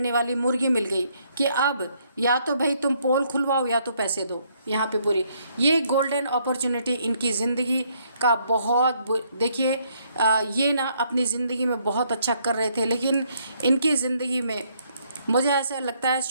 वाली मुर्गी मिल गई कि अब या तो भाई तुम पोल खुलवाओ या तो पैसे दो। यहाँ पे पूरी ये गोल्डन अपॉर्चुनिटी इनकी ज़िंदगी का देखिए ये ना अपनी ज़िंदगी में बहुत अच्छा कर रहे थे, लेकिन इनकी ज़िंदगी में मुझे ऐसा लगता है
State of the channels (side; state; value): both; inverted; correlation -0.70